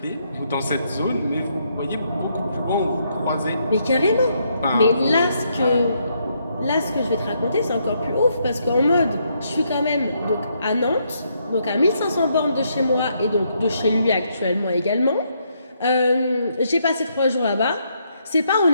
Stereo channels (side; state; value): both; inverted; correlation -0.75